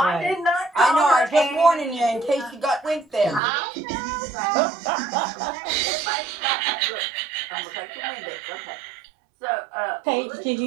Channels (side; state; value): left; drops out; at 3.4 s